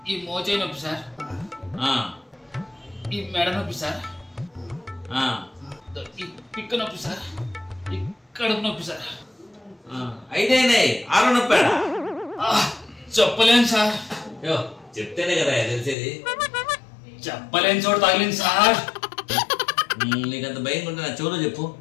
ఈ మోచేయి నొప్పి సార్, ఈ మెడ నొప్పి సార్, ఈ పిక్క నొప్పి సార్, ఈ కడుపు నొప్పి సార్. అయితే 6 నొప్పి చెప్పలేను సార్. చెప్తేనే కదా తెలిసేది. చెప్పలేని చోటు తగిలింది సార్. నీకంత భయం ఉంటే నా చెవులో చెప్పు.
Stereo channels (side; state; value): right; drops out; at 16.0 s